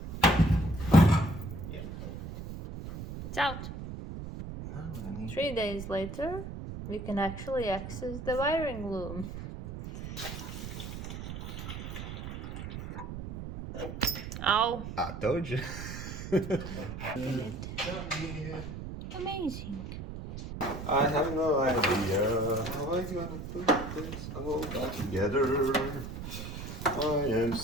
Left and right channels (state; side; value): noise; right; rumble, 8 dB below the sound